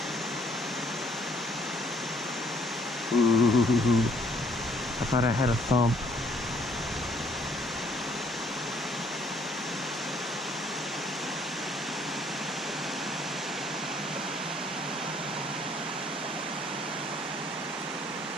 Ooh, I thought I had a thump.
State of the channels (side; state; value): both; normal; correlation 0.63